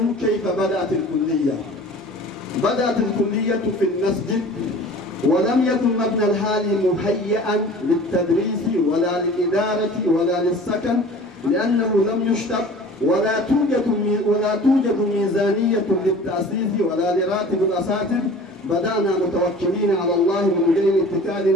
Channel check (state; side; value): normal; both; correlation 0.43